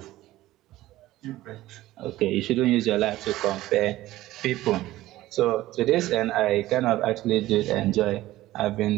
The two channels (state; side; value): quieter; left; 16.1 dB